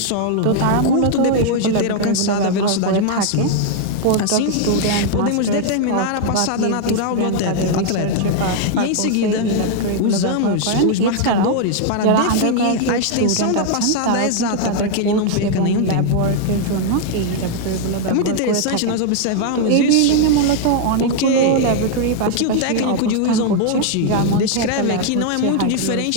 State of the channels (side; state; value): both; different; correlation 0.00